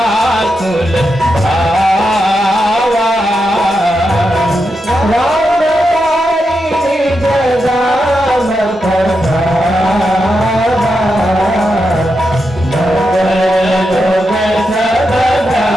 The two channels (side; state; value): both; normal; correlation 0.86